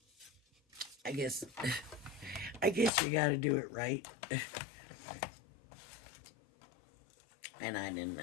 I guess you gotta do it right. And I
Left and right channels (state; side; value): drops out; right; at 2.9 s